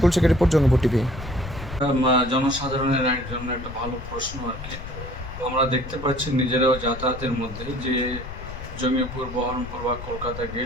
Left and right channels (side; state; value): left; noise; rumble, 10 dB below the sound